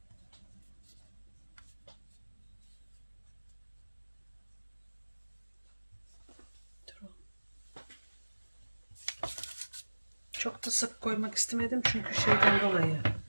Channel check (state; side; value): inverted; both; correlation -1.00